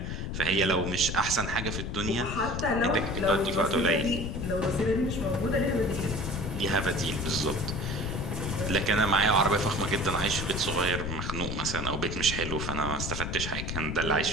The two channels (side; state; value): left; noise; rumble, 4 dB below the sound